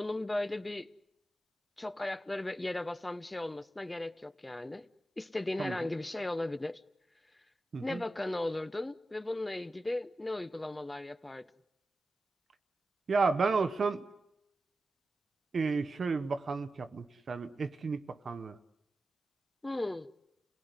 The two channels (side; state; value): both; normal; correlation 0.92